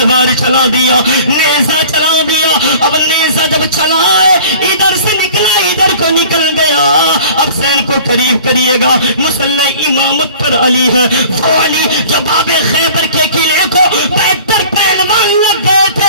چلا دیا نیزہ چلا دیا. اب نیزہ جب چلا ہے ادھر سے نکلا ادھر کو نکل گیا. اب حسین کو قریب کریے گا. مسلح امامت پر علی ہے وہ علی جو باب خیبر کے قلعے کو بہتر پہلوان لگ گئے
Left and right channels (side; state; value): both; inverted; correlation -0.45